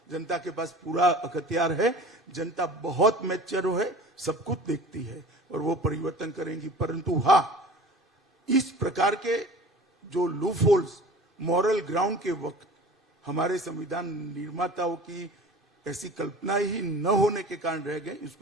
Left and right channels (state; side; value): normal; both; correlation 0.41